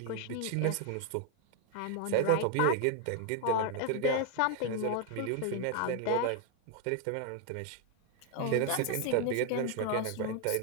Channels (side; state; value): both; different; correlation 0.01